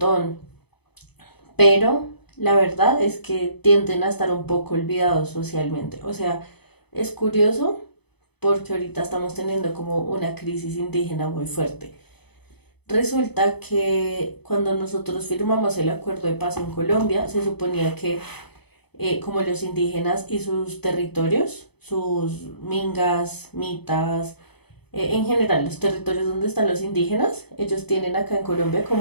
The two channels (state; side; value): late; right; 0.98 ms